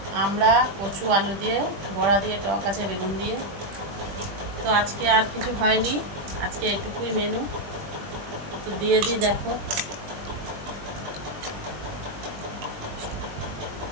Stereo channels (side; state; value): left; late; 20 ms